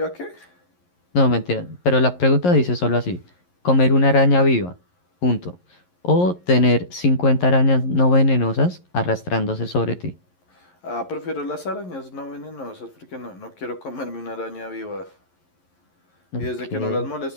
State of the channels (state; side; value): late; right; 11 ms